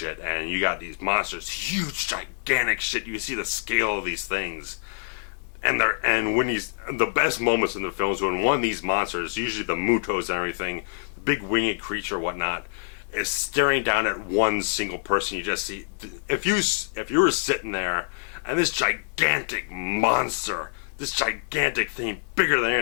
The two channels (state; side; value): silent; right; digital silence